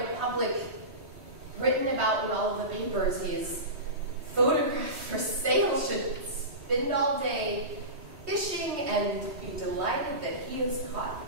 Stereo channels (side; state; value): left; late; 3.1 ms